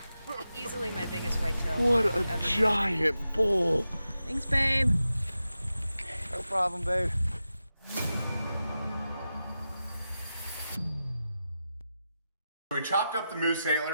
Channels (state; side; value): inverted; both; correlation -0.91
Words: Easily my biggest whitetail. What a giant bull. Thanks, babe. No problem, babe. We chopped up the moose